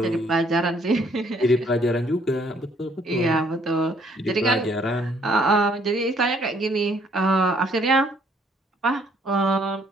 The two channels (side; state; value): both; normal; correlation 0.64